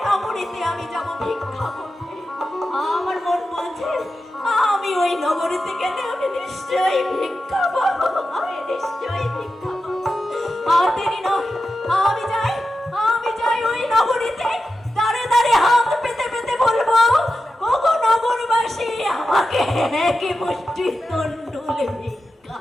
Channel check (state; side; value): normal; both; correlation 0.91